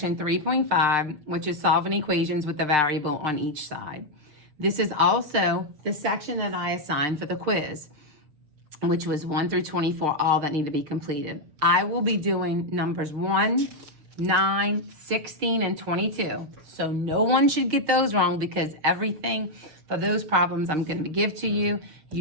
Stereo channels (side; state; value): left; late; 6.6 ms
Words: 3.5, which is solving equations with the variable on each side. This is also the section that I assigned for the quiz, which was 1 through 24, all that need to be completed. I will be doing numbers 1, 9, 16, and 22. So no one should get those wrong because everything for those problems I'm going to give to you,